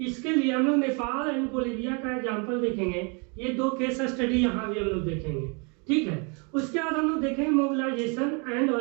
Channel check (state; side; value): quieter; left; 34.2 dB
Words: इसके लिए हम लोग नेपाल एंड बोलिविया का एग्जाम्पल देखेंगे। ये 2 केस स्टडी यहाँ भी हम लोग देखेंगे, ठीक है। उसके बाद हम लोग देखेंगे मोबिलाइजेशन एंड